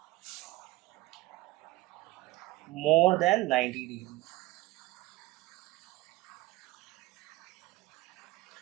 more than 90 degree.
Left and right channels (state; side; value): quieter; left; 19.2 dB